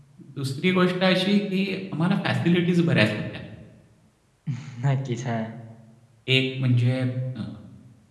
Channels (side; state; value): both; identical; correlation 1.00